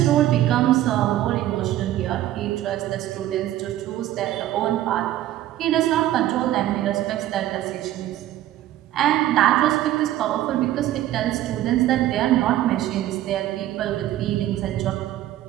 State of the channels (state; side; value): quieter; left; 13.6 dB